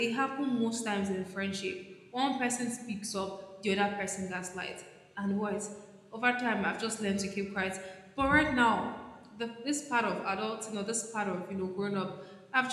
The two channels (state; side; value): identical; both; correlation 1.00